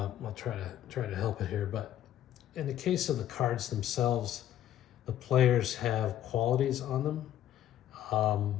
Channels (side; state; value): right; quieter; 11.9 dB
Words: try to help it here, but in the case of the cards themselves, the players have qualities on them,